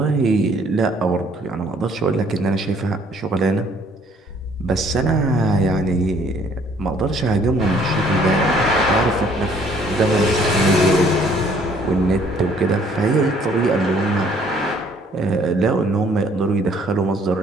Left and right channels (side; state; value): both; normal; correlation 0.61